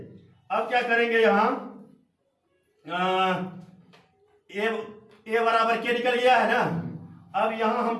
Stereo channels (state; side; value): identical; both; correlation 1.00